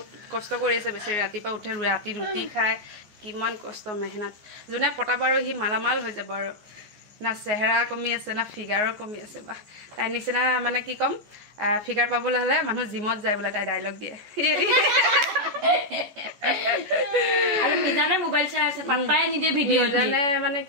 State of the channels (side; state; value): left; late; 14 ms